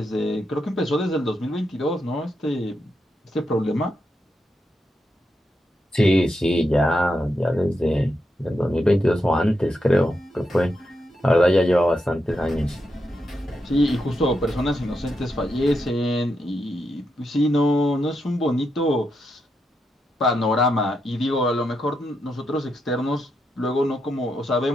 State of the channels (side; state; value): both; normal; correlation 0.84